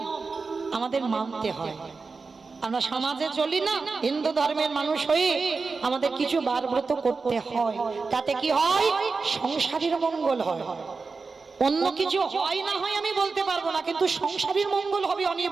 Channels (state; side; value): quieter; left; 4.4 dB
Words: আমাদের মানতে হয়। আমরা সমাজে চলি না, হিন্দু ধর্মের মানুষ হয়ে আমাদের কিছু বার ব্রত করতে হয়। তাতে কি হয়? সংসারের মঙ্গল হয়। অন্য কিছু হয় না হয় আমি বলতে পারবো না, কিন্তু সংসারের মঙ্গল হবে